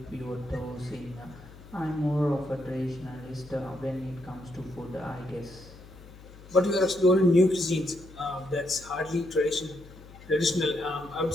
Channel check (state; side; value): noise; left; hum, 19 dB below the sound